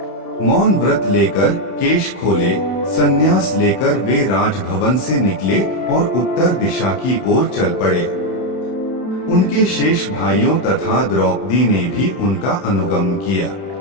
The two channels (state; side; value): late; right; 31 ms